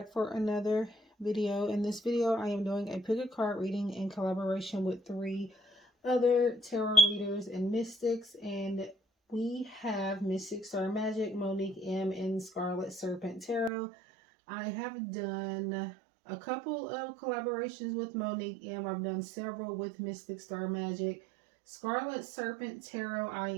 for another video. In this video, I am doing a pick a card reading in collaboration with 3 other tarot readers and mystics, and we have Mystic Star Magic, Monique M, and Scarlet Serpent Tarot. I have done a couple of collaborations with Monique M. I've done several with Mystic Star Magic. Scarlet Serpent Tarot, I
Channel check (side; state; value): left; drops out; at 13.7 s